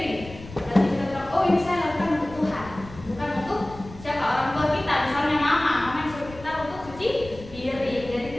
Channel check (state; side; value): noise; left; rumble, 16 dB below the sound